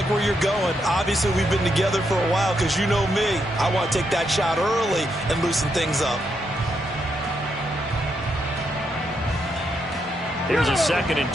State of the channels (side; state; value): both; normal; correlation 0.80